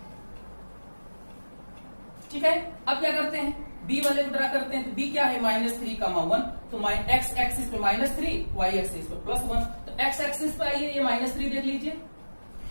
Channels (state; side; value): inverted; both; correlation -1.00